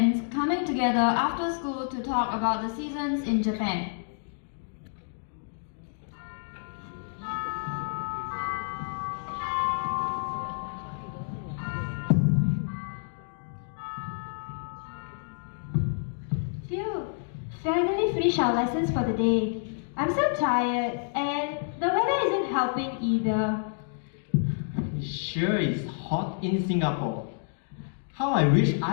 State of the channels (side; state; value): right; silent; digital silence